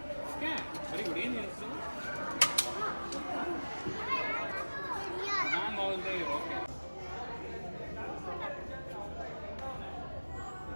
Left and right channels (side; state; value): both; inverted; correlation -1.00